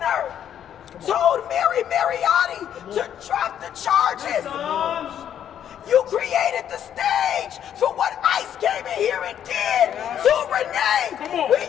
told Mary Mariotti to drop the charges. created the stage for what ICE came in here and did to Renee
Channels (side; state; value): right; quieter; 9.7 dB